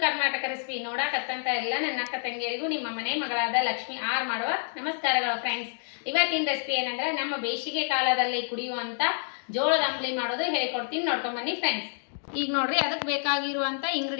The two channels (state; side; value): silent; right; digital silence